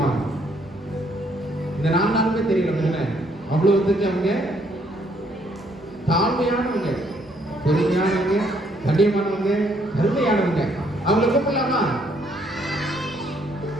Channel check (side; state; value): both; normal; correlation 0.69